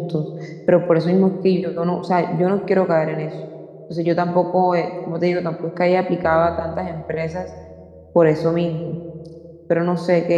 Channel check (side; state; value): both; identical; correlation 1.00